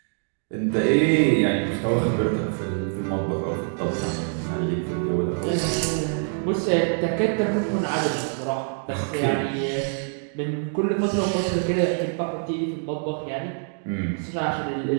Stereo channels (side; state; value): left; silent; 62 dB below the other